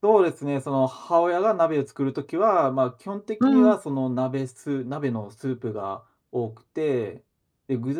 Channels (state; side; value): identical; both; correlation 1.00